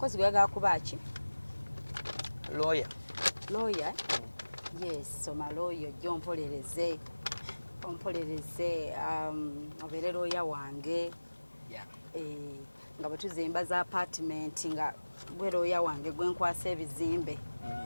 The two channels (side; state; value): both; inverted; correlation -1.00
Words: we are kubachi. Lawyer. Yes, so my lawyer John Polereze. Obere lawyer wange. Yeah. Nga batuzimba za apartment nga gwe lawyer wange gwe nkwasa ebizimbe.